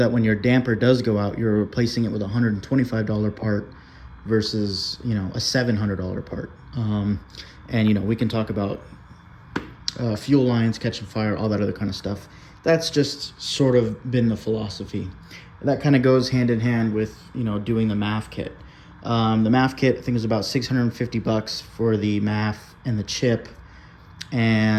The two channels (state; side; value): identical; both; correlation 1.00